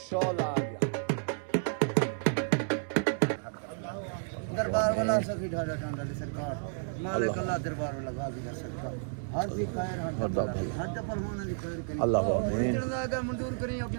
शोला आ गया दरबार वाला सखी ढाडा ढांडा सरकार मालिक अल्लाह दरबार वाला गाजी दा सरकार हर दी खैर हर पहलवान दी खैर करी अल्लाह आमीन जाएगा मंजूर करी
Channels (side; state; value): left; silent; 57 dB below the other